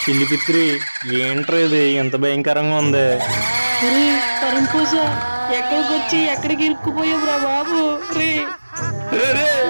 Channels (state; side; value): inverted; both; correlation -1.00